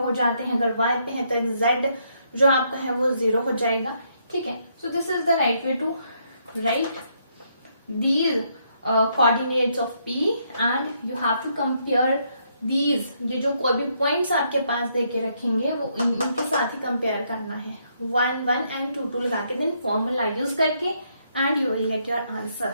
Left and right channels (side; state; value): both; inverted; correlation -0.74